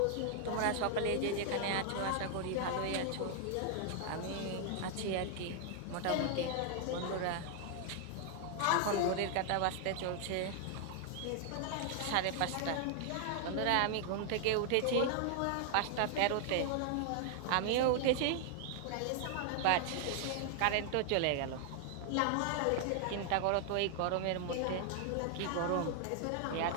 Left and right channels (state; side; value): different; both; correlation 0.00